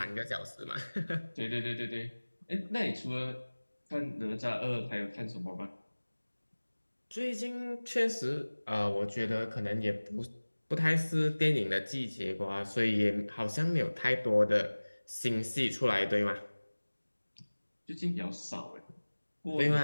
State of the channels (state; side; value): inverted; both; correlation -1.00